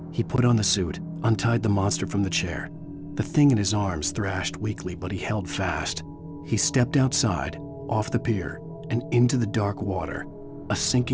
He put on the suit, untied the monster from the chair. The thing in his arms thrashed weakly, but he held fast. He stepped outside, off the pier, and into the dark water, a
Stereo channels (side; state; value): both; identical; correlation 1.00